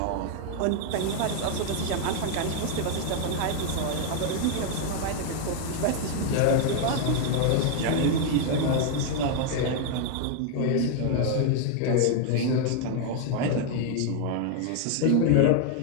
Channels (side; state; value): both; different; correlation 0.00